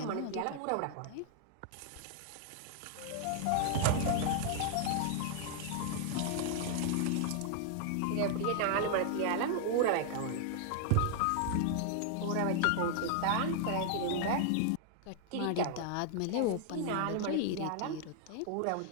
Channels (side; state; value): both; different; correlation 0.00